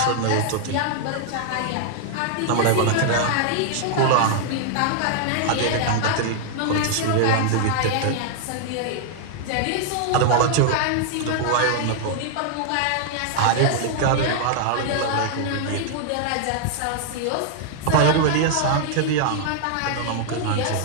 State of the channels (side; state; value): both; different; correlation -0.01